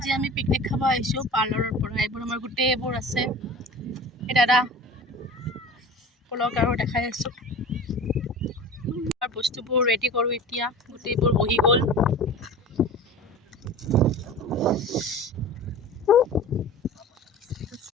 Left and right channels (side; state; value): both; normal; correlation 0.37